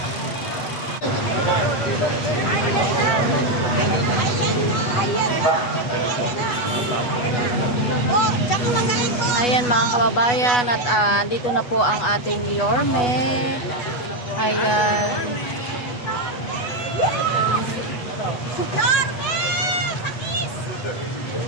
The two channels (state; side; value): late; right; 8.2 ms